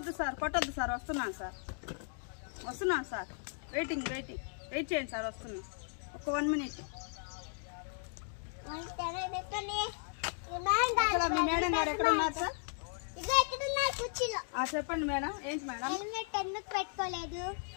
సార్, కొట్టొద్దు సార్. వస్తున్నాను సార్. వెయిట్ చేయండి సార్. వస్తున్నా, ఒక 1 minute. మీ మేడం గారు ఎక్కడ ఉన్నారు సార్? చెప్పండి మేడం. ఏంటి మేడం? హెల్మెట్ ఎందుకు పెట్టుకోలేదు?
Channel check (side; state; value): right; silent; 54 dB below the other